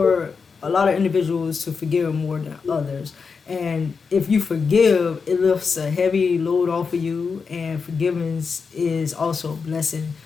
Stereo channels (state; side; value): quieter; right; 5.3 dB